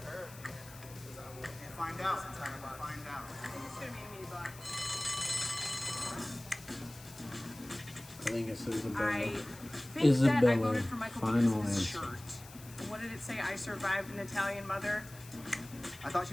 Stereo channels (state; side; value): noise; left; hiss, 18 dB below the sound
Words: her? Find out. Find out. I think it's gonna be me, but I think it's Isabella. I think that I Isabella, voted for Michael final because of his answer. shirt. What did it say? I survived an Italian mother. I thought she